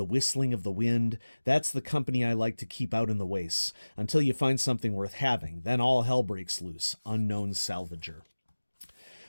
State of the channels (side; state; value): both; inverted; correlation -1.00